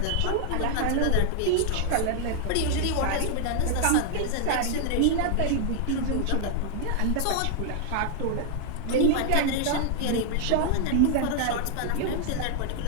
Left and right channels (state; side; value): different; both; correlation -0.01